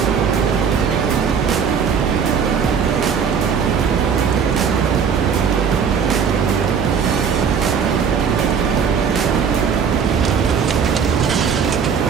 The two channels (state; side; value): quieter; left; 6.7 dB